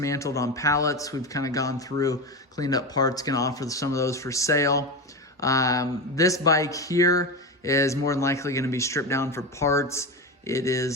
on pallets. We've kind of gone through, cleaned up parts, going to offer some of those for sale. This bike here is more than likely going to be stripped down for parts. It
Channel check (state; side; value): normal; both; correlation 0.20